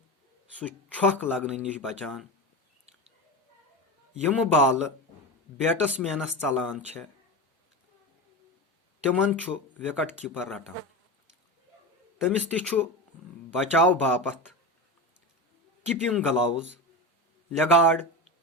سُہ چھۄکھ لگنہٕ نِش بچان۔ یِمہٕ بالہٕ بیٹسمینس ژلان چھےٚ تِمن چھُ وِکٹ کیپر رٹان۔ تٔمِس تہِ چھُ بچاو باپتھ کیپنگ گلاوز، لیگاڈ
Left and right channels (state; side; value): normal; both; correlation 0.22